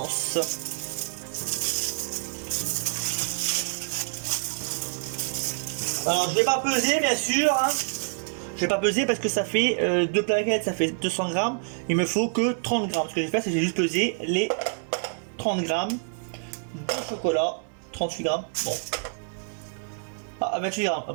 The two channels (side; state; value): left; silent; 60 dB below the other